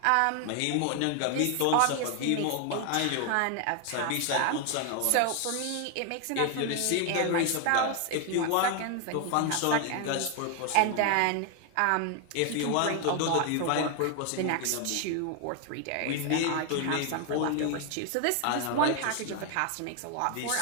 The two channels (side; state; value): both; different; correlation 0.01